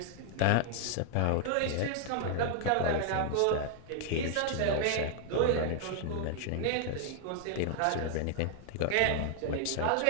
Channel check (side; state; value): both; different; correlation 0.00